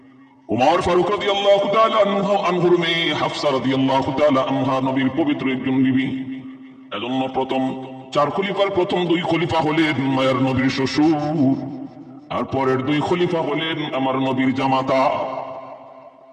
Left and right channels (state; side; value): identical; both; correlation 1.00